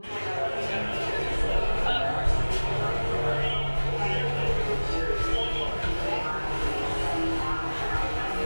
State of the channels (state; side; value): inverted; both; correlation -1.00